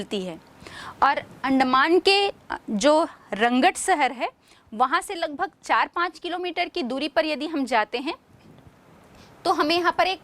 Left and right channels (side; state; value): both; identical; correlation 1.00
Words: है। और अंडमान के जो रंगट शहर है वहाँ से लगभग 4-5 किलोमीटर की दूरी पर यदि हम जाते हैं तो हमें यहाँ पर